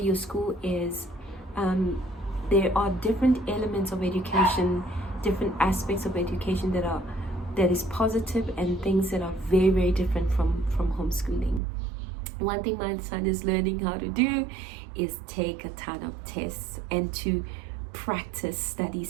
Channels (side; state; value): left; drops out; at 11.6 s